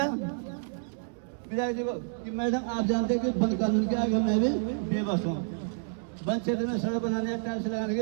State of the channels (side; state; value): left; silent; digital silence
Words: विधायक जी को कि मैडम आप जानते हैं कि वन कानून के आगे मैं भी बेबस हूँ, वन क्षेत्र में सड़क बनाने, टाइल्स लगाने की